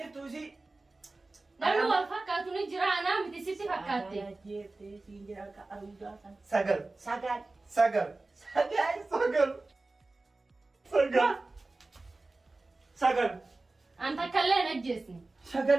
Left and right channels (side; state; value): left; quieter; 3.2 dB